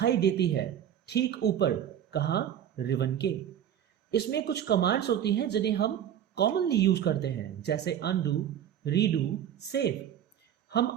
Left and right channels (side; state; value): left; quieter; 10.0 dB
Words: देती है ठीक ऊपर, कहां, रिवन के। इसमें कुछ कमांड्स होती हैं जिन्हें हम कॉमनली यूज करते हैं, जैसे अनडू, रीडू, सेव।